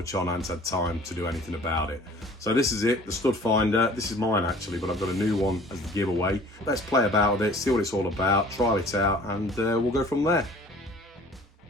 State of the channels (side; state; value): both; normal; correlation 0.49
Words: on, I hadn't had time to do anything about it. So this is it, the stud finder. This is mine actually, but I've got a new one as the giveaway. Let's play about with it, see what it's all about, try it out, and we'll go from there.